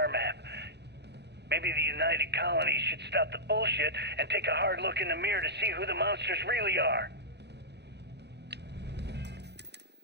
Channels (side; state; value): left; late; 0.49 ms